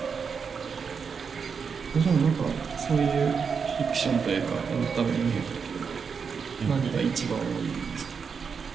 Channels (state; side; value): quieter; left; 6.0 dB